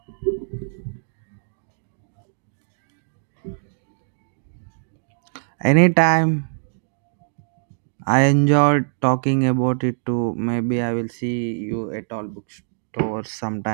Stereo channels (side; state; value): left; silent; digital silence